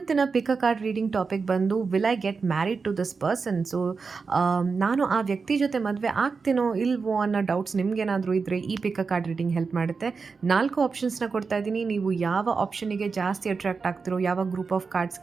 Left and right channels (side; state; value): left; quieter; 4.9 dB